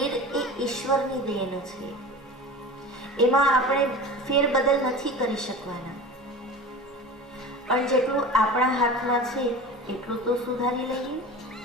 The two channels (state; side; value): normal; both; correlation 0.34